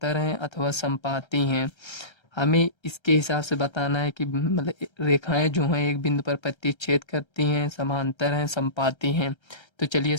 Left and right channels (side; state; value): right; late; 1.3 ms